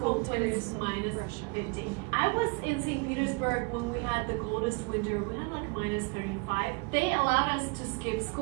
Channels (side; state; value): left; quieter; 32.0 dB